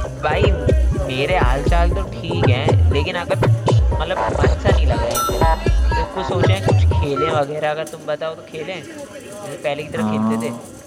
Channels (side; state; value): both; identical; correlation 1.00